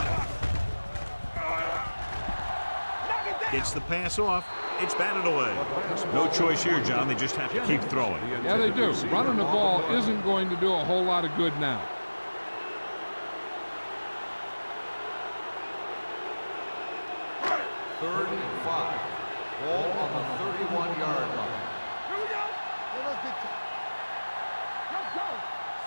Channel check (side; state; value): both; inverted; correlation -1.00